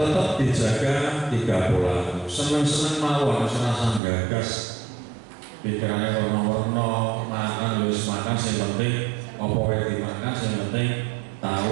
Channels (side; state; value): left; drops out; at 4.0 s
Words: dijaga 3 pola. Seneng-seneng mawon, serasa gagas, pikirannya warna-warna, makan harus makan. Yang penting apa yang dimakan, yang penting